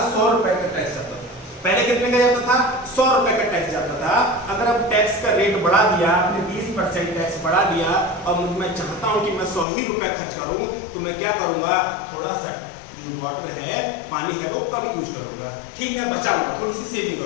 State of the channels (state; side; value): drops out; right; at 9.7 s